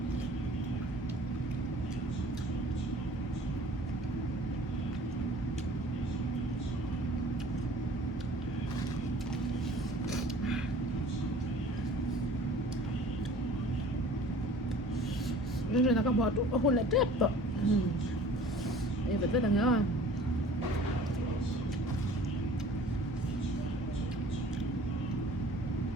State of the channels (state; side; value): normal; both; correlation 0.47